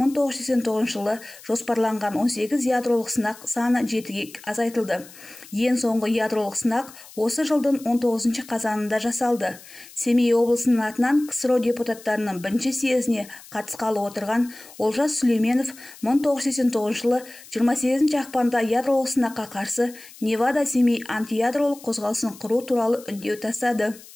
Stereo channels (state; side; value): noise; left; hiss, 20 dB below the sound